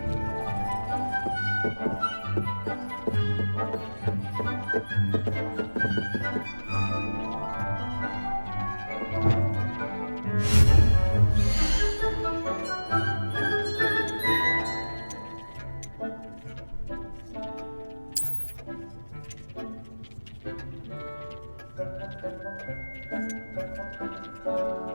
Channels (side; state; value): both; inverted; correlation -1.00